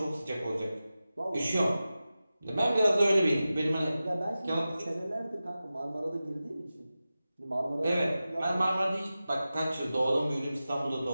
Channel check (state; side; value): inverted; both; correlation -0.94